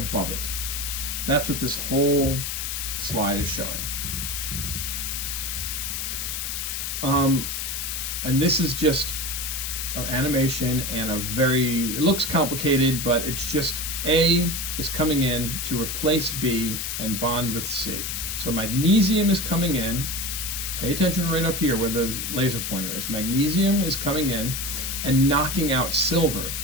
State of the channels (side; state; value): left; noise; hiss, 3 dB below the sound